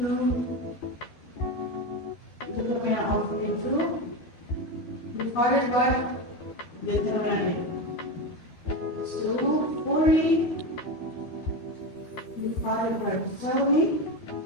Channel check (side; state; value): right; late; 12 ms